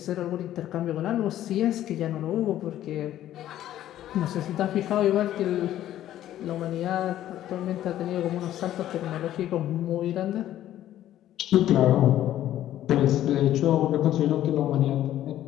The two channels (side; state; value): right; quieter; 12.6 dB